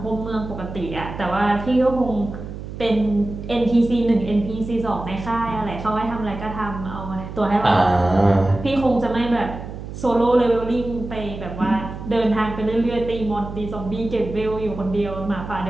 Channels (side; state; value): right; noise; hum, 10 dB below the sound